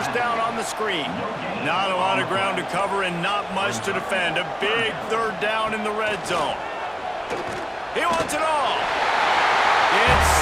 down on the screen. Not a lot of ground to cover and not much to defend. A big 3rd down in the red zone. He wants it all. It's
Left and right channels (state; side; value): identical; both; correlation 1.00